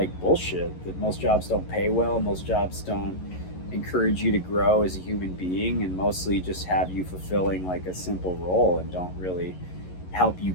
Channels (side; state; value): right; late; 11 ms